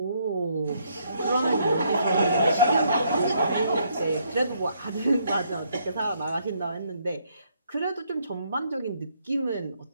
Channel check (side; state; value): both; inverted; correlation -0.71